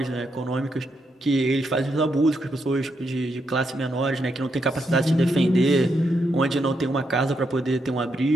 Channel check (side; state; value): both; normal; correlation 0.80